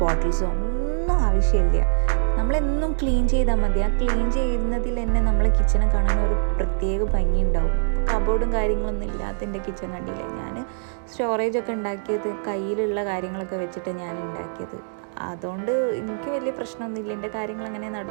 ബോട്ടിൽസോ ഒന്നും ആവശ്യമില്ല. നമ്മളെന്നും ക്ലീൻ ചെയ്താൽ മതി. ആ ക്ലീൻ ചെയ്യുന്നതിൽ തന്നെ നമ്മളെ കിച്ചനെ കാണാൻ ഒരു പ്രത്യേക ഭംഗി ഉണ്ടാവും. കബോർഡും കാര്യങ്ങളൊന്നും ഇല്ലാത്ത എൻ്റെ കിച്ചൺ കണ്ടില്ലേ, ഞാൻ സ്റ്റോറേജൊക്കെ ഉണ്ടാക്കിയത് കയ്യിലുള്ള കാര്യങ്ങളൊക്കെ വെച്ചിട്ട് ഞാൻ ഉണ്ടാക്കിയത്. അതുകൊണ്ട് എനിക്ക് വലിയ പ്രശ്നമൊന്നുമില്ല. എൻ്റെ കാര്യങ്ങൾ അങ്ങനെ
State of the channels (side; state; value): left; silent; digital silence